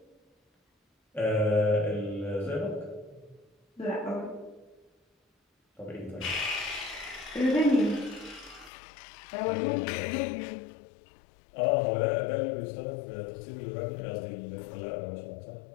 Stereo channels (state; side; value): drops out; right; at 8.7 s